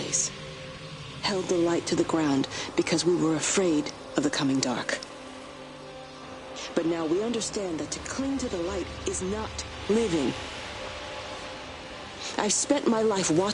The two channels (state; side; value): identical; both; correlation 1.00